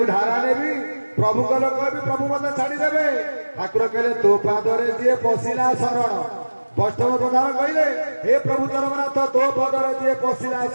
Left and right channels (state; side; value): inverted; both; correlation -1.00